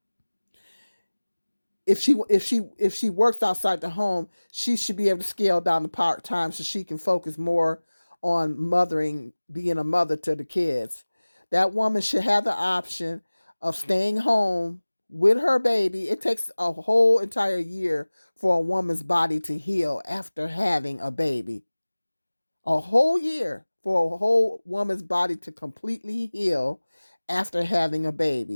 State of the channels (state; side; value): inverted; both; correlation -1.00